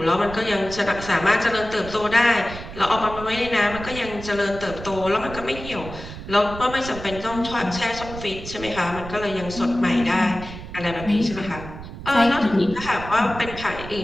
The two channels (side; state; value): right; noise; rumble, 12 dB below the sound